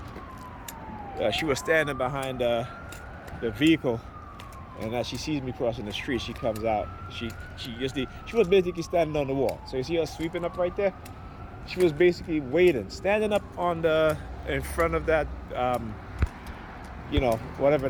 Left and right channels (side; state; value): both; identical; correlation 1.00